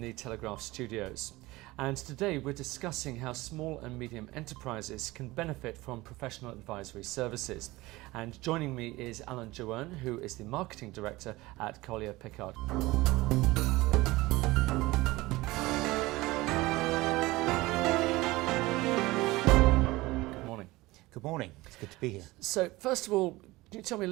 the Telegraph studios, and today we're discussing how small and medium enterprises can benefit from professional advisory services. And joining me is Alan Joanne, who is the Marketing Director at Collier Pickard. Good morning. Good morning, it's good to be here. So first of all, can you tell me a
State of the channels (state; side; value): quieter; left; 20.0 dB